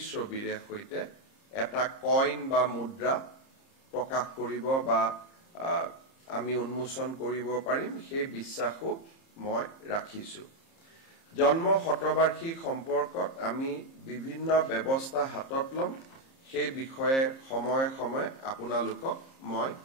সৈতে এটা কইন বা মুদ্ৰা প্ৰকাশ কৰিব বা আমি উন্মোচন কৰিব পাৰিম সেই বিশ্বাসও মই ৰাখিছো জন্ম শতবাৰ্ষিক সম্পৰ্কত আমি বিভিন্ন ব্যৱস্থা হাতত লম সেই বিষয়ে সময়ে সময়ে আপোনালোকক মই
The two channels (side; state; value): right; late; 30 ms